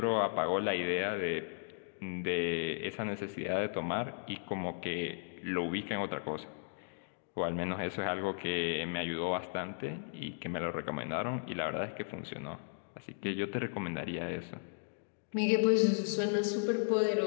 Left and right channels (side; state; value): right; silent; digital silence